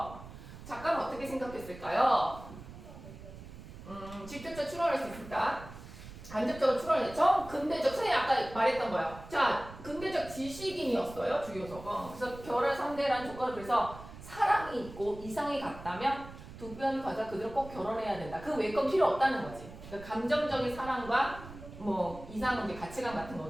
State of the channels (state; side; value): noise; right; rumble, 15 dB below the sound